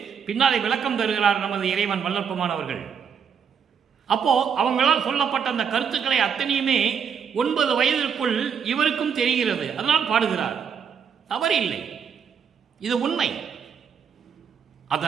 பின்னாலே விளக்கம் தருகிறார் நமது இறைவன் வல்லற்பமானவர்கள். அப்போ அவங்களால் சொல்லப்பட்ட அந்த கருத்துக்களை அத்தனையுமே 9 வயதிற்குள் இவருக்கும் தெரிகிறது. அதனால் பாடுகிறார். தவறு இல்லை, இது உண்மை.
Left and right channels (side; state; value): left; quieter; 7.2 dB